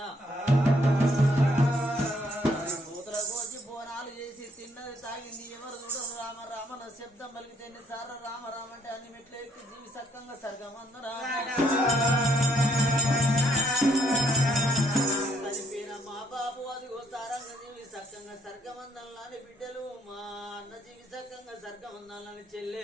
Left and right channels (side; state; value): both; normal; correlation 0.68